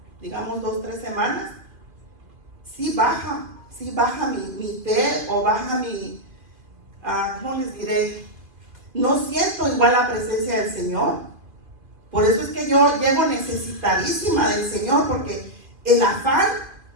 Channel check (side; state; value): left; late; 2.5 ms